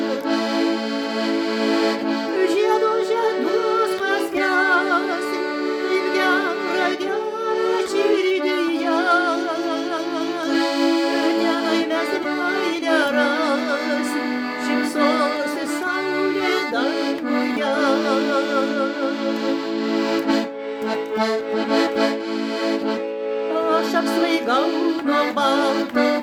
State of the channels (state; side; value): identical; both; correlation 1.00